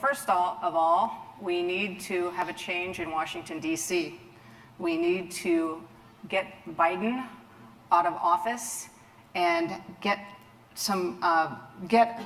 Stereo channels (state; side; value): identical; both; correlation 1.00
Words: of all, we need to have a change in Washington, D.C. We need to get Biden out of office and get